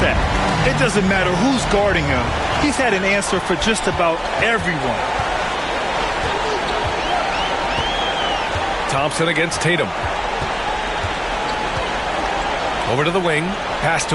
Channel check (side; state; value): both; identical; correlation 1.00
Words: at. It doesn't matter who's guarding him. He's had an answer for just about everyone. Thompson against Tatum. Over to the wing. Pass